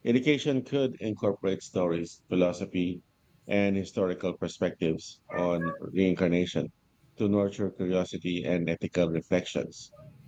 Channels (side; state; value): both; identical; correlation 1.00